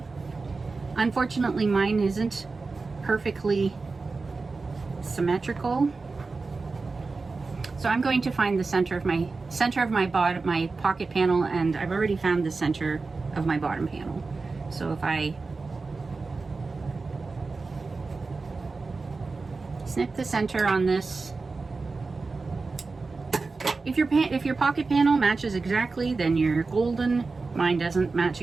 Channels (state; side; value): quieter; left; 4.0 dB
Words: Unfortunately, mine isn't perfectly symmetrical. So I'm going to find the center of my pocket panel, and I've already found the center of my bottom panel. So if I snip the center on this, if your pocket panel matches exactly, then you're golden. Mine doesn't match